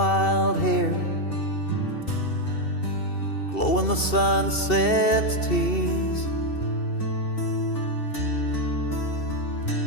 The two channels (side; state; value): right; late; 2.7 ms